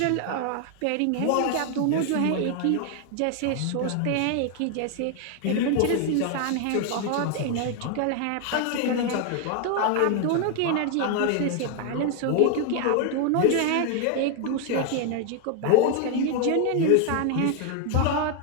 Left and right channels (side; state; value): both; different; correlation 0.01